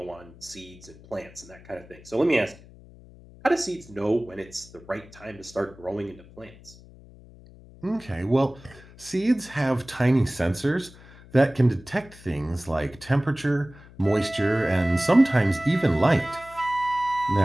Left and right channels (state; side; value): noise; left; hum, 22 dB below the sound